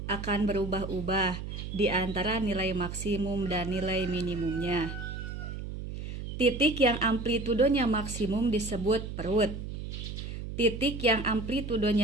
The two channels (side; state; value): right; noise; hum, 7 dB below the sound